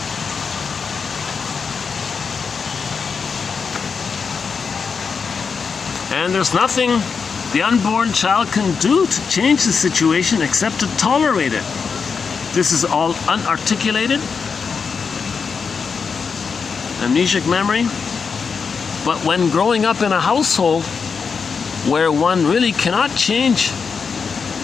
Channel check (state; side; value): quieter; right; 5.6 dB